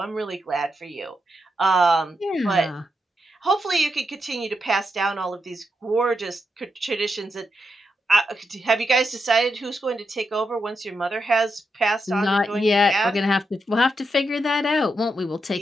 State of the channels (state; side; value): normal; both; correlation 0.84